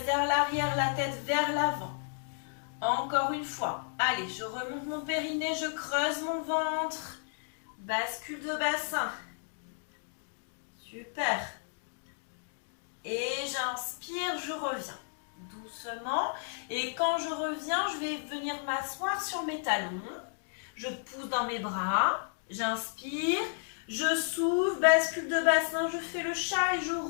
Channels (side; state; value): right; silent; digital silence